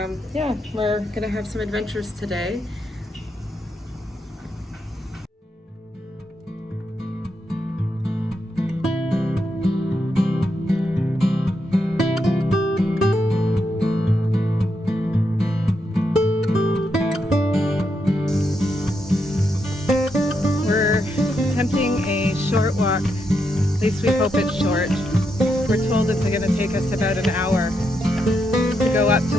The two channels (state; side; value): normal; both; correlation 0.82